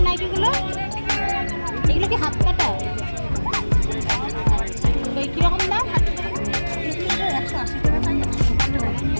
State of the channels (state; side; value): inverted; both; correlation -1.00